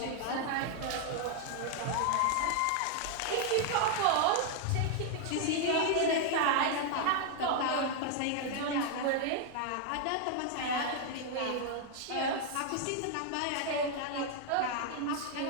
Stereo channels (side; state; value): both; different; correlation 0.00